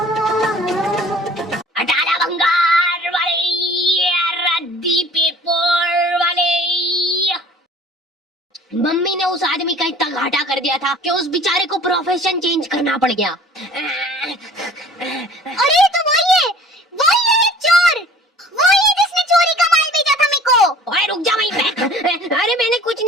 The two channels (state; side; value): normal; both; correlation 0.49